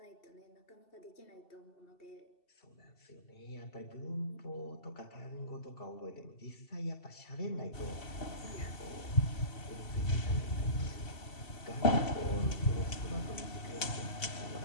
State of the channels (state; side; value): late; right; 2.7 ms